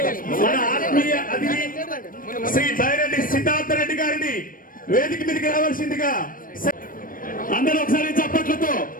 ఆత్మీయ అతిథి శ్రీ బైరెడ్డి సిద్ధార్థ రెడ్డి గారిని వేదిక మీదకి రావాల్సిందిగా అందరూ ఒకసారి చప్పట్లతో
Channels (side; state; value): right; late; 0.40 ms